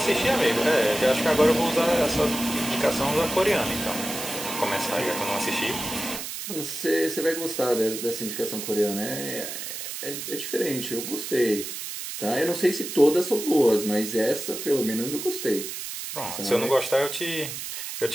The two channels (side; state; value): right; noise; hiss, 7 dB below the sound